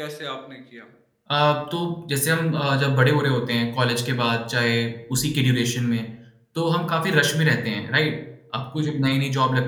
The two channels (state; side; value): identical; both; correlation 1.00